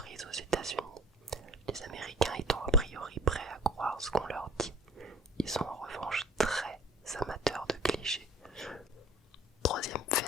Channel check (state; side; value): normal; both; correlation 0.48